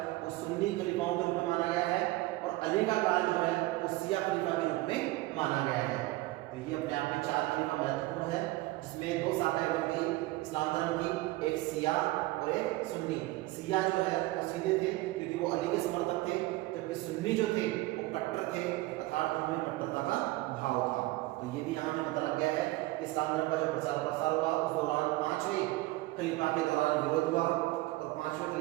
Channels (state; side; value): quieter; left; 19.4 dB